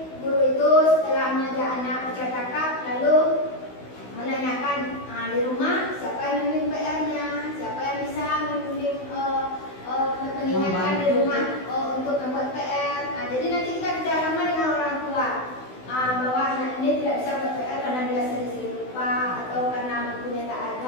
guru itu setelah mengajak anak bercakap lalu menanyakan di rumah siapa yang membimbing PR-nya, siapa yang bisa membimbing mengingatkan di rumah untuk membuat PR. Jadi nanti kita bersama dengan orang tua bahwa anak ini tidak bisa buat PR karena dia sering lupa atau karena bukunya tak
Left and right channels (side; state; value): right; late; 16 ms